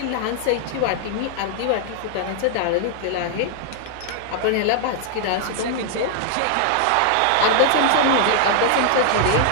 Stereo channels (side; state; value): both; different; correlation 0.00